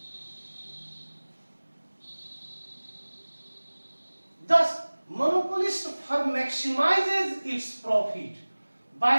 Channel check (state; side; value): inverted; both; correlation -1.00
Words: Thus, monopolist firm maximizes its profit by